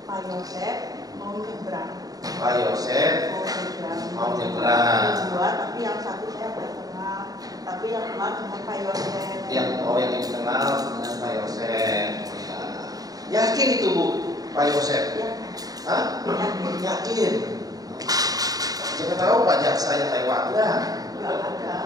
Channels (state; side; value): late; left; 0.18 ms